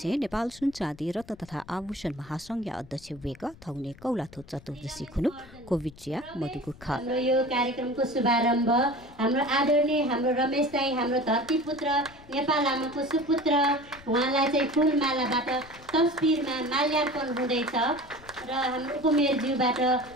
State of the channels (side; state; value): left; noise; rumble, 22 dB below the sound